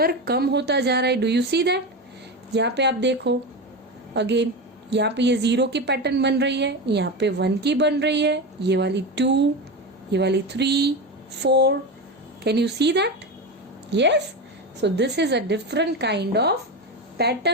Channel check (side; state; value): both; normal; correlation 0.20